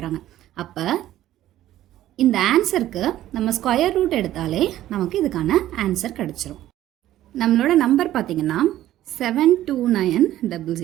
அப்போ இந்த ஆன்சருக்கு நம்ம ஸ்கொயர் ரூட் எடுத்தாலே நமக்கு இதுக்கான ஆன்சர் கிடச்சிரும். நம்மளோட நம்பர் பார்த்தீங்கன்னா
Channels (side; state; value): left; quieter; 13.6 dB